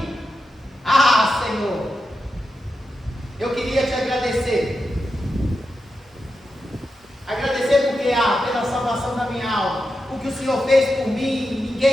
Ah, Senhor, eu queria te agradecer. Agradecer porque pela salvação da minha alma. O que o Senhor fez por mim,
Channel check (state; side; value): normal; both; correlation 0.88